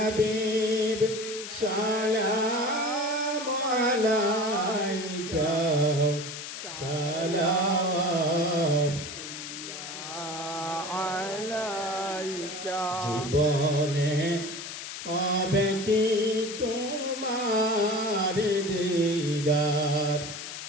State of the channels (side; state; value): left; noise; hiss, 9 dB below the sound